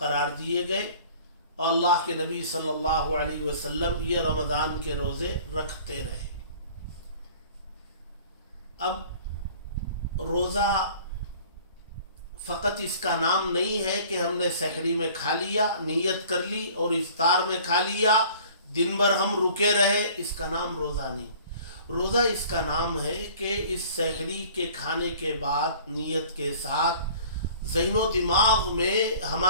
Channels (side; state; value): both; inverted; correlation -0.49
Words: دیے گئے, اور اللہ کے نبی صلی اللہ علیہ وسلم یہ رمضان کے روزے رکھتے رہے. اب روزہ فقط اس کا نام نہیں ہے کہ ہم نے سحری میں کھا لیا, نیت کر لی اور افطار میں کھا لیا, دن بھر ہم رکے رہے, اس کا نام روزہ نہیں. روزہ اس کا نام ہے کہ اس سحری کے کھانے کے بعد نیت کے ساتھ ذہن و دماغ میں